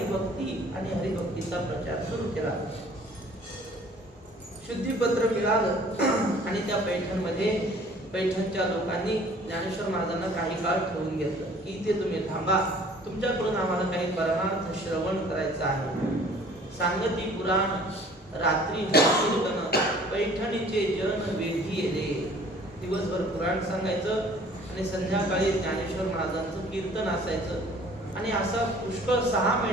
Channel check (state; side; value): normal; both; correlation 0.52